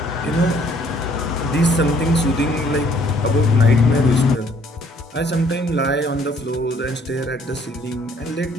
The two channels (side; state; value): both; normal; correlation 0.61